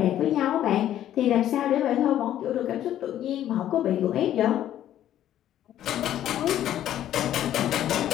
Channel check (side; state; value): right; quieter; 11.8 dB